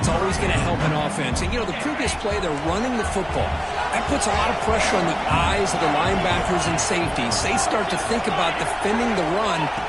always going to help an offense. And, you know, the previous play, they're running the football. That puts a lot of pressure on the eyes of the linebackers and safeties. They start to think about defending the run,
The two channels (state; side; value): identical; both; correlation 1.00